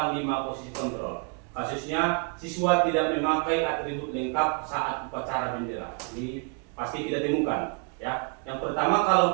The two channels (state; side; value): quieter; left; 39.7 dB